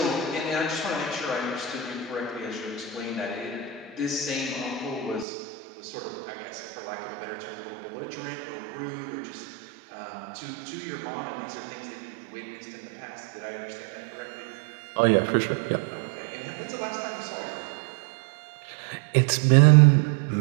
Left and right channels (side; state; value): left; drops out; at 5.2 s